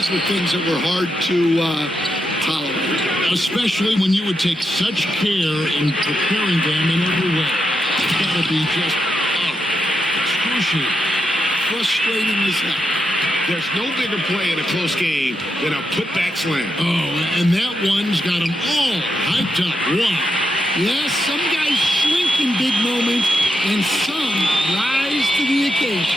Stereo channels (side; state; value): both; normal; correlation 0.84